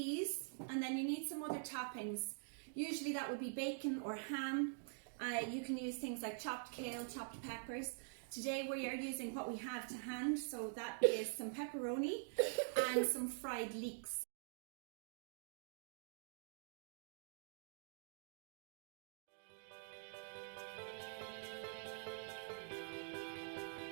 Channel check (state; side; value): silent; left; digital silence